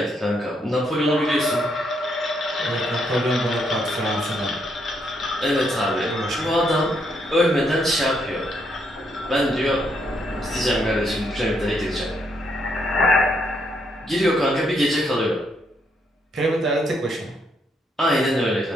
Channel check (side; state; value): both; normal; correlation 0.75